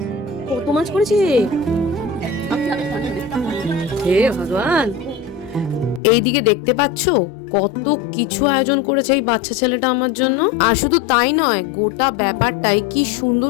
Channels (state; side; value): drops out; right; at 6.0 s